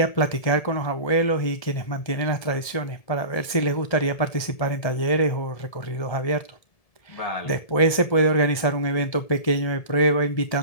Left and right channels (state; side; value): late; right; 1.7 ms